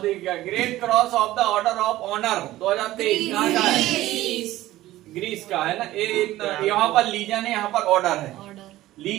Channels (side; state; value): left; quieter; 15.8 dB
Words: का। Great cross of the order of honour 2023 कहाँ का है? ग्रीस का है ना। यहाँ पर लीजन है, यहाँ पर ऑर्डर है।